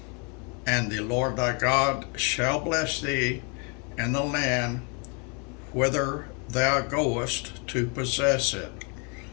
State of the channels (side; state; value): right; quieter; 34.7 dB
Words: And the Lord thy God shall bless thee in the land whither thou goest to possess it.